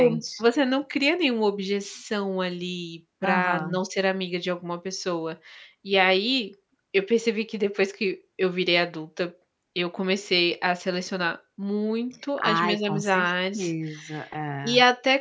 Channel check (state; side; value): identical; both; correlation 1.00